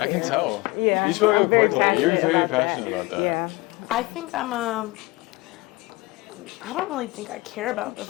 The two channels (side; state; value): right; quieter; 22.3 dB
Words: can tell. Yeah. You spoke I'm up very quickly. You're very about that. passionate about that. Yeah. I think I'm I don't really think I care about the